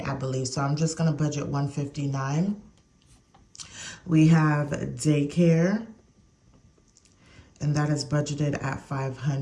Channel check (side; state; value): both; identical; correlation 1.00